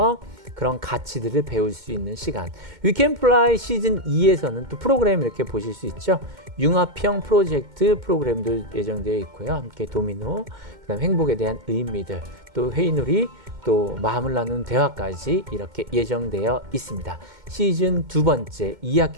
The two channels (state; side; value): late; left; 2.1 ms